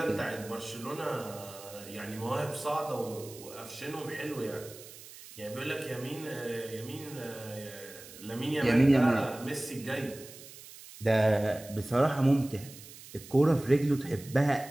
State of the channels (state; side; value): noise; right; hiss, 17 dB below the sound